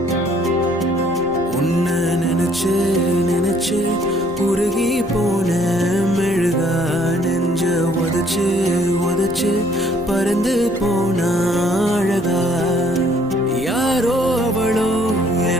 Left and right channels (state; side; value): noise; left; rumble, 21 dB below the sound